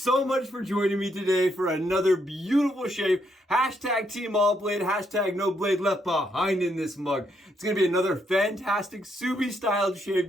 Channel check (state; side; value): normal; both; correlation 0.75